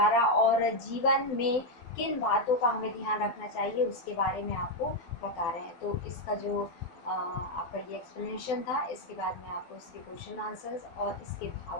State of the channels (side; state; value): right; late; 12 ms